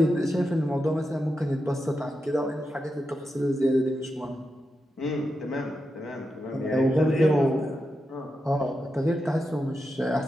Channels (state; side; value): normal; both; correlation 0.88